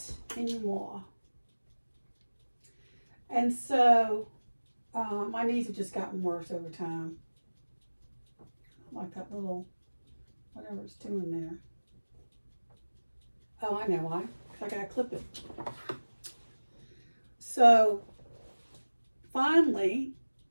anymore. And so, my knees have just gotten worse over time. Like that little, whatever it's doing there. Oh, I know why. Because I gotta clip it. So, finally,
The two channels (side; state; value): both; inverted; correlation -1.00